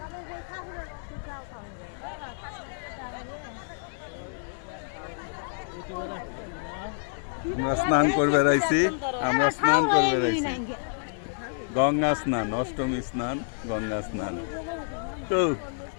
আমরা স্নান করবে রাইছি, আমরা স্নান করবে রাইছি। গঙ্গা স্নান, অষ্টমী স্নান, গঙ্গা স্নান। তো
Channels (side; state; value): right; silent; digital silence